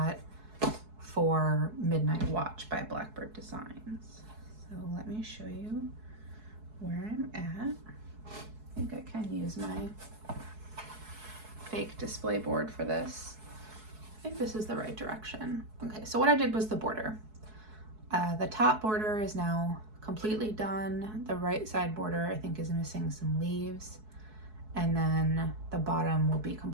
for Midnight Watch by Blackbird Designs. So let me show you where I'm at. I think I can use my fake display board for this. I think this is the right direction. Okay, so what I did was the border. The top border is now completely done. The right side border I think is missing some leaves. And then the bottom will be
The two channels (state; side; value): late; left; 4.7 ms